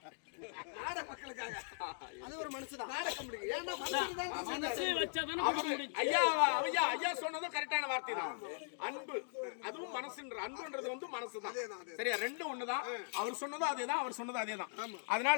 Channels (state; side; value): silent; right; digital silence